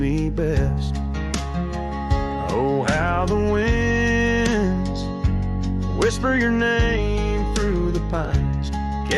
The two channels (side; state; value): both; identical; correlation 1.00